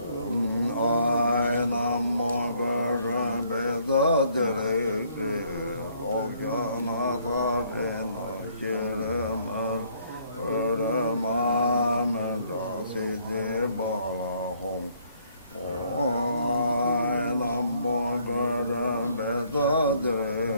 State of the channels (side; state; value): both; inverted; correlation -0.66